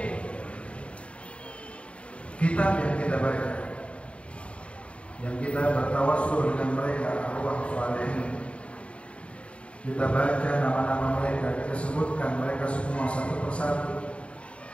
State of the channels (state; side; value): late; right; 0.061 ms